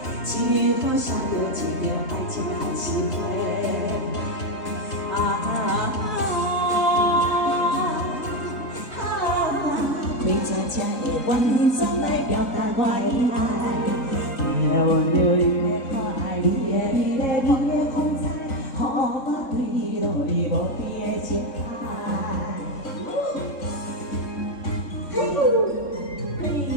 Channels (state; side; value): late; right; 3.4 ms